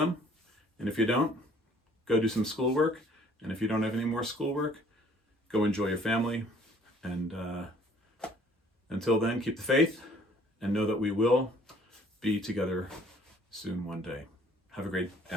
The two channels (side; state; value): both; normal; correlation 0.57